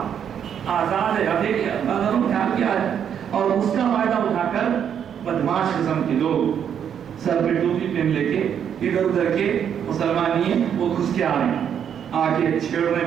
آزاد ہے، دیکھیے اللہ نے خیال کیا ہے، اور اس کا فائدہ اٹھا کر بدماش قسم کے لوگ سر پہ ٹوپی پہن لے کے ادھر ادھر کے مسلمان نہیں ہیں وہ گھس کے آ رہے ہیں، آ کے چھیڑ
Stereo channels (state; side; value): quieter; left; 8.5 dB